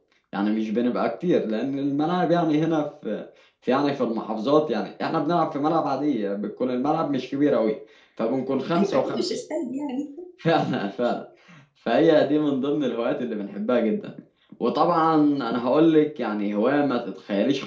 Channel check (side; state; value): both; identical; correlation 1.00